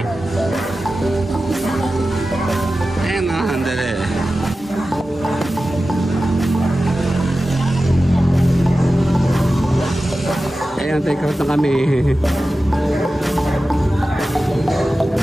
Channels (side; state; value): both; normal; correlation 0.94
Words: Ayan na. Handali. Ayan, take out na kami.